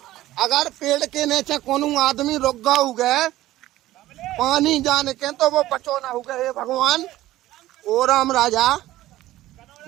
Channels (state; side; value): quieter; left; 15.5 dB